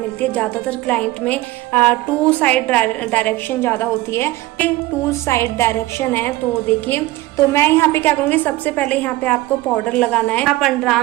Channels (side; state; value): left; quieter; 18.0 dB